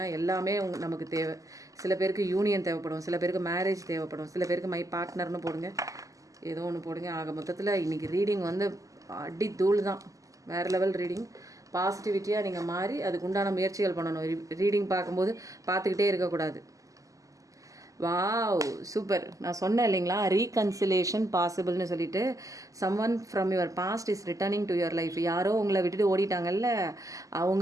எல்லாமே நமக்கு தேவை. சில பேருக்கு யூனியன் தேவைப்படும், சில பேருக்கு மேரேஜ் தேவைப்படும், சில பேருக்கு மை பார்ட்னர்னு போடுங்க. ஏதோ ஒன்று போடுங்க. ஆக மொத்தத்தில் இன்றைக்கி ரீடிங் வந்து அடி தூள் தான். வேறு லெவல் ரீடிங். பாசிட்டிவிட்டியாக நீங்கள் மாறி அதுக்கு உண்டான முயற்சிகள் பண்ணணும். ரீடிங் பார்க்கும்போது பார்த்துக்கிட்டே இருக்கக்கூடாது. Wow super. நான் சொன்னேன் இல்லைங்களா, ரீகன்சிலேஷன் பாசிபிள்னு சொல்லிட்டு. Someone from your past is returning to your life. யாரோ உங்களை விட்டுட்டு ஓடிட்டாங்கல்ல,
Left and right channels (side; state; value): left; late; 0.16 ms